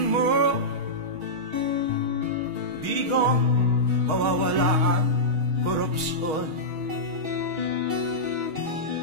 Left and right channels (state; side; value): late; left; 6.4 ms